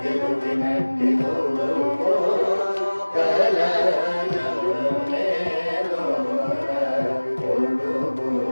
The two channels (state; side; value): inverted; both; correlation -1.00